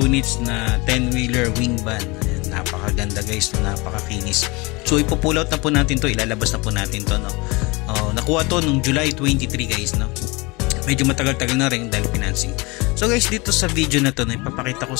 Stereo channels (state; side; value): quieter; right; 25.7 dB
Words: na 10-wheeler wing van. Ayan, napakaganda guys, napakakinis. So ipo-pull out na po natin to, ilalabas na po natin to, nakuha to nung July 23 guys, medyo matagal-tagal na rin dahil financing. So guys, dito sa video na to, ipapakita ko